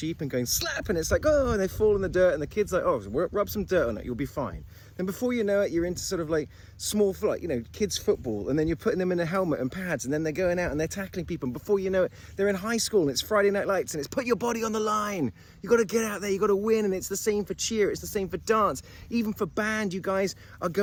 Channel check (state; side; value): identical; both; correlation 1.00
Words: and going slap, and it's like, oh, and they fall in the dirt, and the kid's like, oh, rub some dirt on it, you'll be fine. Then before you know it, you're into sort of like small, like, you know, kids football, and then you're putting them in a helmet and pads, and then they're going out and they're tackling people, and before you know it, they're in high school, and it's Friday Night Lights, and it's put your body on the line. You got to get out there, you got to win, and it's the same for cheer, it's the same for dance, even for band. You guys are